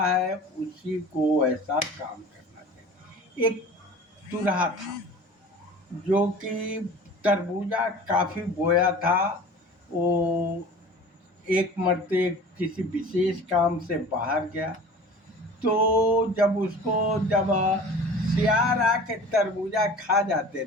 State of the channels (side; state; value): both; normal; correlation 0.41